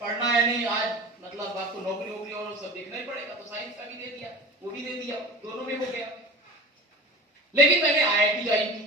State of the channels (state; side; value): normal; both; correlation 0.36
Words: पढ़ना है नहीं, आज मतलब आपको नौकरी और सब देखना ही पड़ेगा, तो साइंस का भी दे दिया, वो भी दे दिया, दोनों में हो गया। लेकिन मैंने आईआईटी ज्वाइन